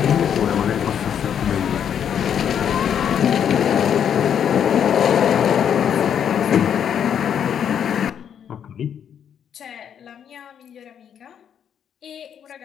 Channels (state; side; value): quieter; right; 8.6 dB